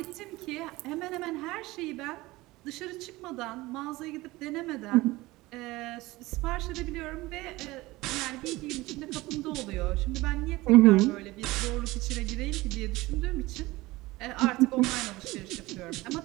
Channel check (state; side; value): quieter; left; 20.0 dB